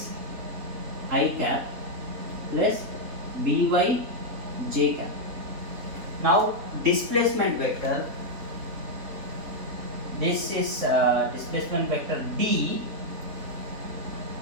I cap plus By j cap. Now displacement vector, this is displacement vector D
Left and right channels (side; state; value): left; late; 3.6 ms